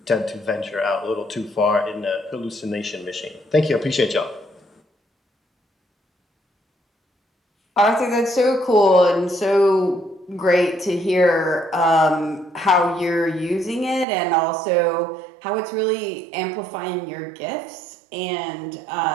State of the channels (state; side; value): drops out; left; at 14.1 s